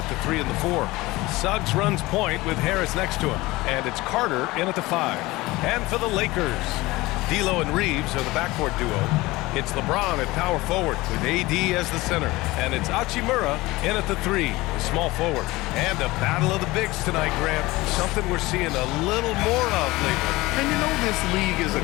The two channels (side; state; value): right; quieter; 20.3 dB